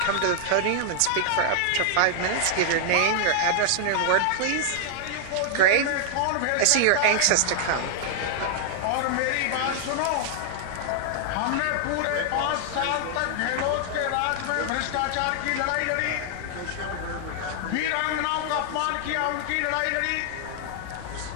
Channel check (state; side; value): different; both; correlation 0.00